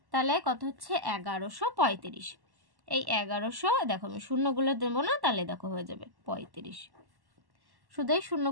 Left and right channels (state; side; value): late; left; 1.1 ms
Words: তাহলে কত হচ্ছে 1135। এই 1100 দেখো আমি শূন্যগুলো দেবো না, তাহলে দেখো হয়ে যাবে 35। শুধু এই